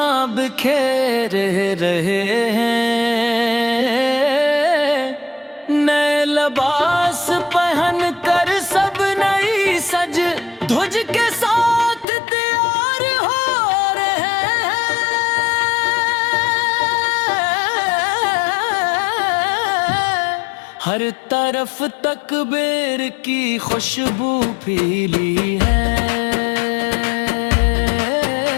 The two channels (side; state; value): right; drops out; at 12.1 s